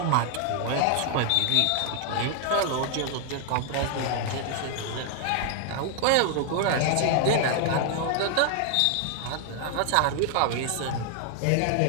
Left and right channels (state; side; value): different; both; correlation 0.00